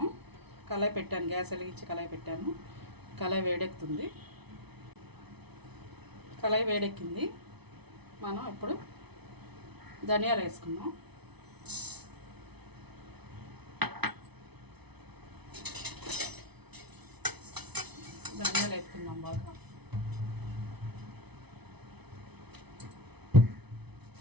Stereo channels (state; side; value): late; left; 0.99 ms